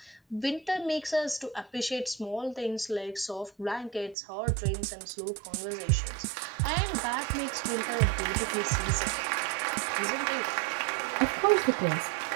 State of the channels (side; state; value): left; drops out; at 4.2 s